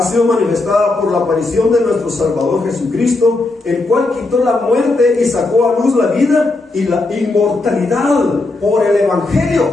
sido manifestada por la aparición de nuestro Salvador Jesucristo, el cual quitó la muerte y sacó a luz la vida y la inmortalidad por el Evangelio.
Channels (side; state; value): right; quieter; 3.2 dB